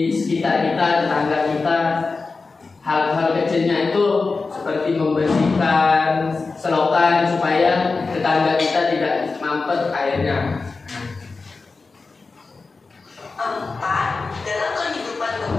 sekitar kita, tetangga kita. Hal-hal kecilnya itu seperti membersihkan selokan supaya tetangga kita tidak mampet airnya. Empat, dalam kehidupan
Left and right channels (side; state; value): right; quieter; 4.1 dB